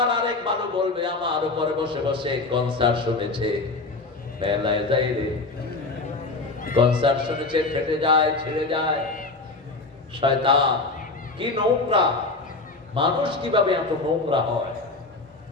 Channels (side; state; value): right; quieter; 3.5 dB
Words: আরেক বালু বলবে আমার উপরে বসে বসে কনসার্ট শুনেছে। মেলায় যাই রে, কনসার্ট শুনেছে, ফেটে যায়, ছিঁড়ে যায়। শয়তান কি নোংরা, মানুষ কিভাবে এত নোংরা হয়,